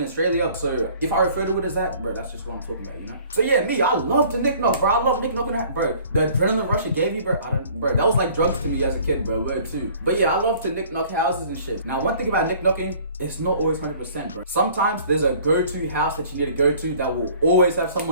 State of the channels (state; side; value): inverted; both; correlation -0.52